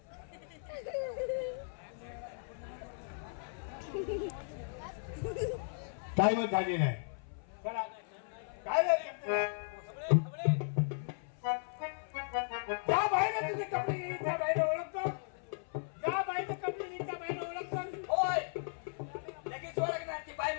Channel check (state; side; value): silent; right; 54 dB below the other